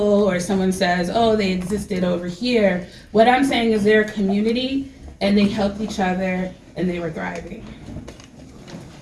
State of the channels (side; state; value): both; identical; correlation 1.00